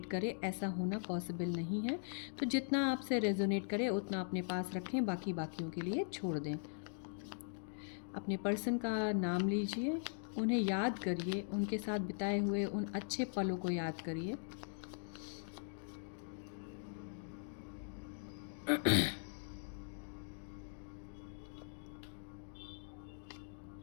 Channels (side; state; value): right; silent; digital silence